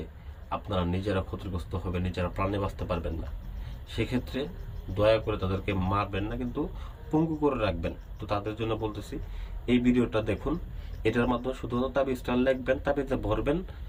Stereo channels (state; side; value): identical; both; correlation 1.00